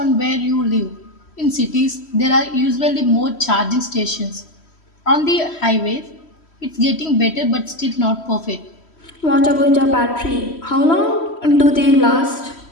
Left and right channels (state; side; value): late; right; 3.1 ms